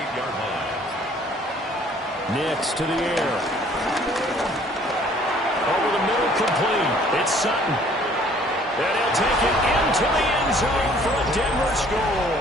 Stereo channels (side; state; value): both; normal; correlation 0.57